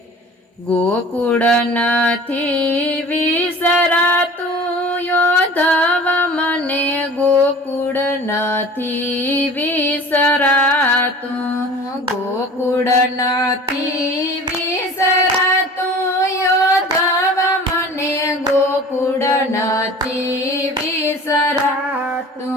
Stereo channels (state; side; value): normal; both; correlation 0.42